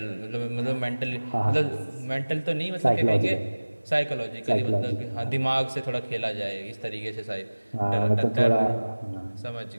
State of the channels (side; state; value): both; inverted; correlation -1.00